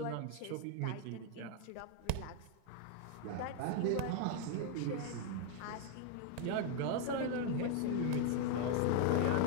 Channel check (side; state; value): both; different; correlation 0.00